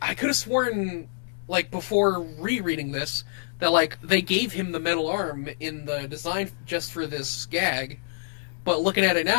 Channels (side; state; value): right; silent; digital silence